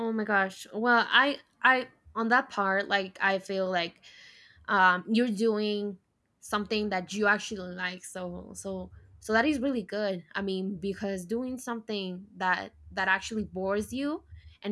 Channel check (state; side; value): identical; both; correlation 1.00